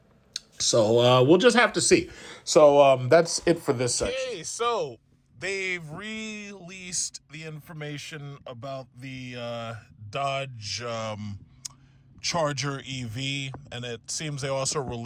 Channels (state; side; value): identical; both; correlation 1.00